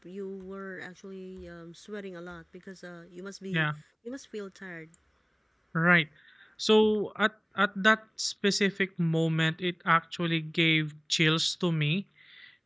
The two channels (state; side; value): identical; both; correlation 1.00